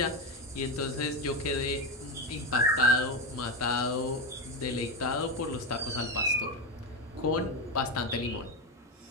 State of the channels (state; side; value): normal; both; correlation 0.14